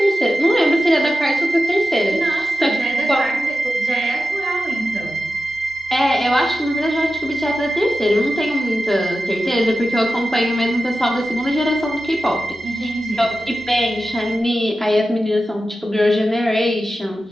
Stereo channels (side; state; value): both; normal; correlation 0.92